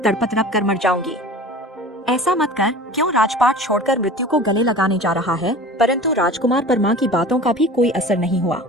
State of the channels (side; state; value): both; normal; correlation 0.39